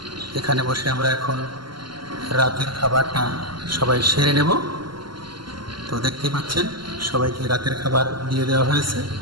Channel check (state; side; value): late; left; 0.73 ms